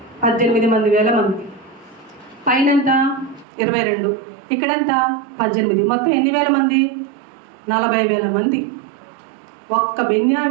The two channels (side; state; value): left; drops out; at 3.5 s